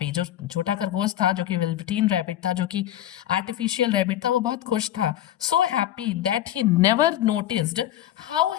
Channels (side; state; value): right; quieter; 12.5 dB